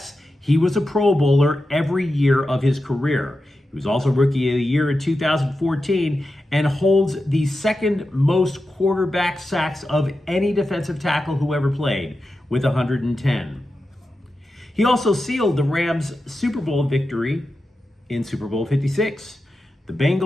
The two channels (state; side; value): normal; both; correlation 0.91